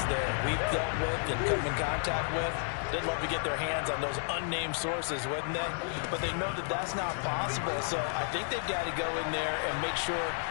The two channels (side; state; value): right; silent; 56 dB below the other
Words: that we've dealt with and come in contact with. They'd love to get their hands on those unnamed sources, wouldn't they? But they know that that's not possible, so I think they've got to go in there and make sure